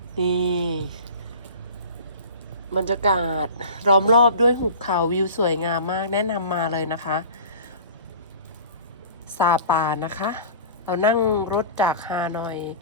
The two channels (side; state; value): both; inverted; correlation -0.39